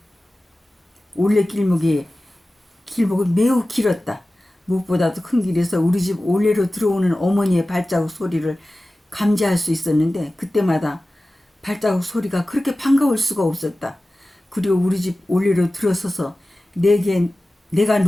올레길목이 매우 길었다. 무엇보다도 큰 길에서 우리 집 올레로 들어오는 어머니의 발자국 소리를 감지할 수 있었는데 그때마다 발자국 소리가 그렇게 반가울 수가 없었다. 그리고 우리 집 올레로 들어서서 내가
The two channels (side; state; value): both; normal; correlation 0.96